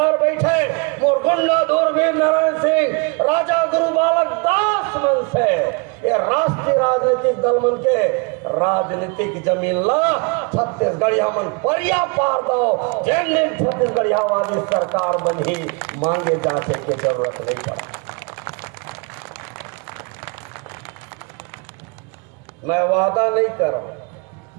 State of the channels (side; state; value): left; quieter; 31.9 dB